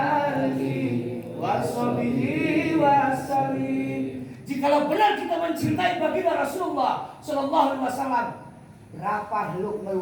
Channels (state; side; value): identical; both; correlation 1.00